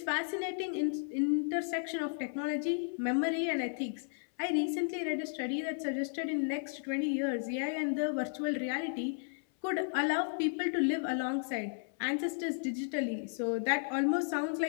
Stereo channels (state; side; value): silent; right; 55 dB below the other